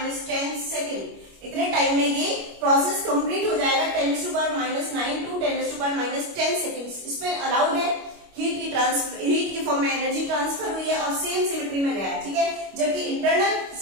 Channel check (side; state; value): left; late; 25 ms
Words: सेकेंड। इतने टाइम में ये प्रोसेस कंप्लीट हो जाएगा, 10⁻⁹ to 10⁻⁻10 सेकेंड्स। इसमें अलाउड है, हीट की फॉर्म में एनर्जी ट्रांसफर हुई है और सेम सिमेट्री में गया है, ठीक है। जबकि इंटरनल